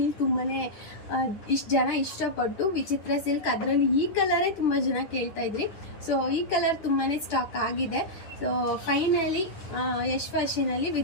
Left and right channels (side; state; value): right; late; 10 ms